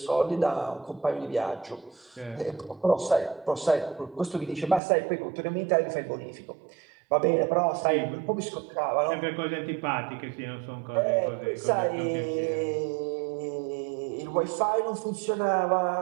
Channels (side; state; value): left; drops out; at 4.8 s